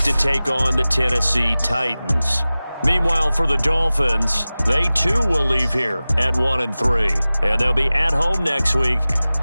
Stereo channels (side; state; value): both; inverted; correlation -0.97